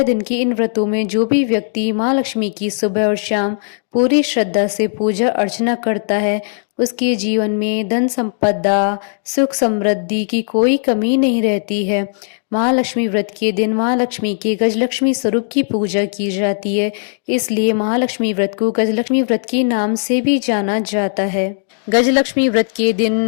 दिन के इन व्रतों में जो भी व्यक्ति महालक्ष्मी की सुबह और शाम पूरी श्रद्धा से पूजा अर्चना करता है, उसके जीवन में धन संपदा, सुख समृद्धि की कोई कमी नहीं रहती है। महालक्ष्मी व्रत के दिन महालक्ष्मी के गजलक्ष्मी स्वरूप की पूजा की जाती है, इसलिए महालक्ष्मी व्रत को गजलक्ष्मी व्रत के नाम से भी जाना जाता है। गजलक्ष्मी व्रत के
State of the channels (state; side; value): silent; right; digital silence